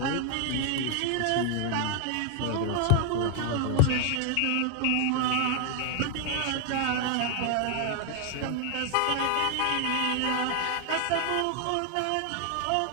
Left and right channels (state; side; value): different; both; correlation 0.00